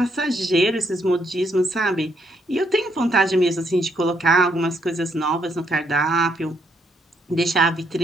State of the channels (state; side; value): normal; both; correlation 0.74